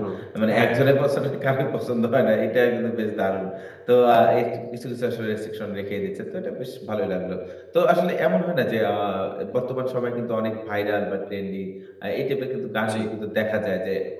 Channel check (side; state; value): both; identical; correlation 1.00